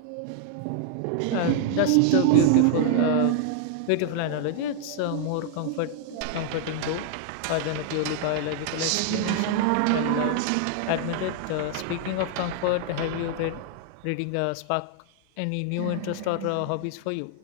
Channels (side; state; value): both; different; correlation 0.00